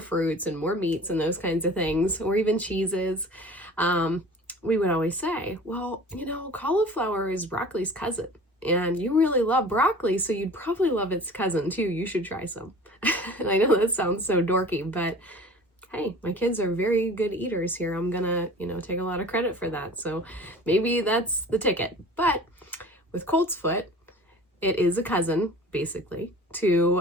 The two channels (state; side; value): normal; both; correlation 0.43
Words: fruits and more meats and those kinds of things, or even cheeses, we would always say, well, you know, cauliflower is broccoli's cousin, and you really love broccoli, so you'd probably love its cousin too. You should try some. And I know that sounds so dorky, but hey, my kids are very good eaters here. I'm gonna, you know, take a lot of credit for that. So maybe that's the ticket. But with Coltsfoot, it is a cousin, basically,